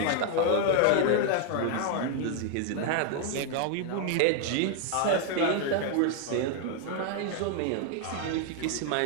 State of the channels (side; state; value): both; different; correlation 0.01